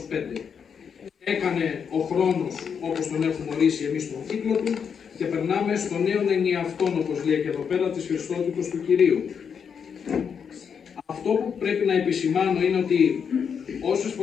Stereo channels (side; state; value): right; quieter; 6.9 dB